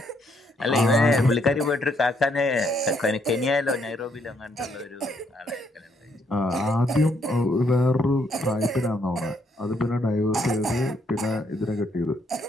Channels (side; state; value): both; normal; correlation 0.72